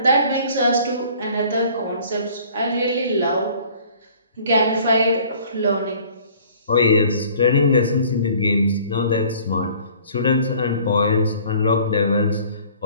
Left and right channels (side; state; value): both; inverted; correlation -0.53